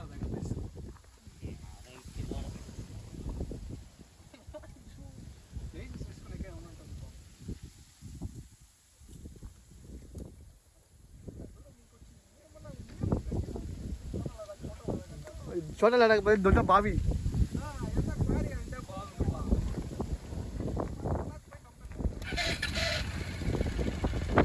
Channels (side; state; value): both; identical; correlation 1.00